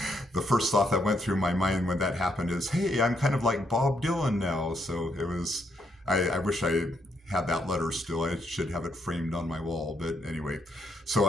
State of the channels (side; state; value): both; normal; correlation 0.75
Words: first thought that went through my mind when that happened is, hey, I'm kind of like Bob Dylan now. So it was, I wish I had that letter still. I should have it framed on my wall. But anyway, so